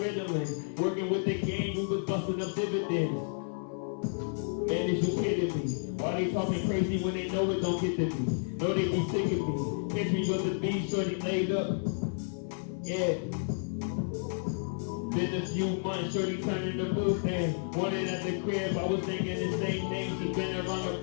Working with the gang, we was busting up dividends. Man, is you kidding me? Why they talking crazy when they know it don't get to me? Know they be sick of me. Catch me with the beat, shorty laid up. Yeah. Been a few months, shorty turning the booth and wanted at the crib, I was thinking the same name. She been around the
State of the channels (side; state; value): right; silent; 57 dB below the other